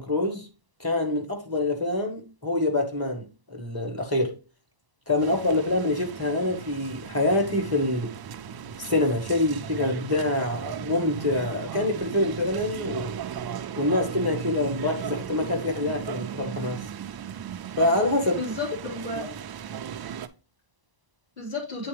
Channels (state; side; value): late; left; 1.0 ms